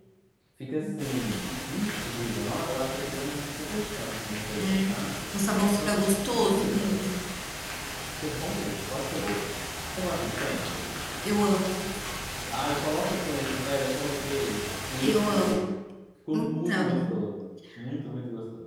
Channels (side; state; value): both; identical; correlation 1.00